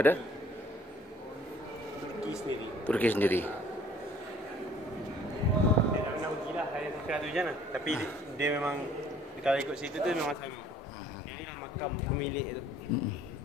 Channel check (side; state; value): both; normal; correlation 0.56